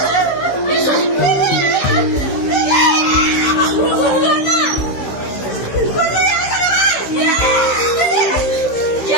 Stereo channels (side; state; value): right; late; 15 ms